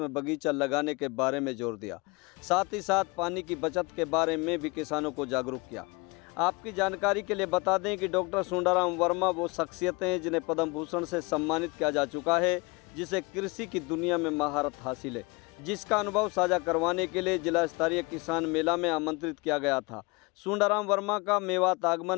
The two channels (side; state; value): right; quieter; 27.0 dB